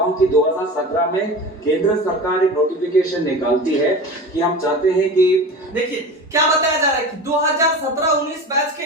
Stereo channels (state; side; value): normal; both; correlation 0.32